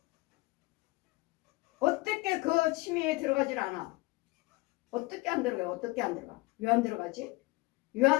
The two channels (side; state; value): right; quieter; 23.1 dB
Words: 어떻게 그 침이 들어가질 않아? 어떻게 안 들어가요? 어떻게 안 들어가? 왜 안 들어가지? 왜